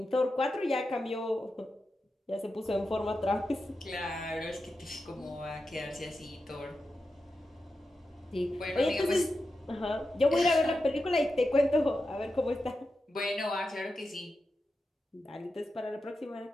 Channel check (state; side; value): normal; both; correlation 0.90